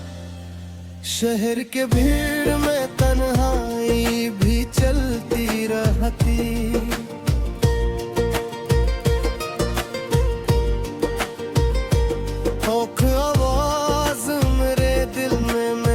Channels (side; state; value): both; identical; correlation 1.00